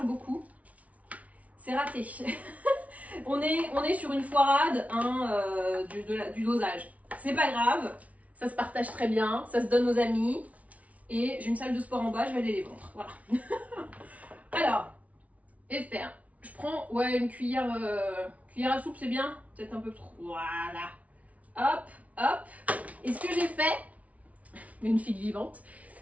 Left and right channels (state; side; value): late; left; 0.068 ms